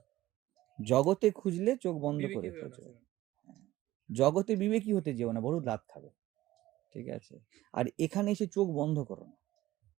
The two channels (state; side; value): quieter; left; 16.0 dB